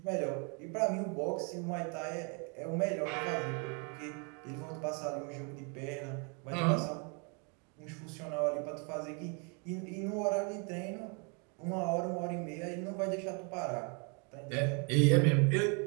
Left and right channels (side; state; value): left; quieter; 35.5 dB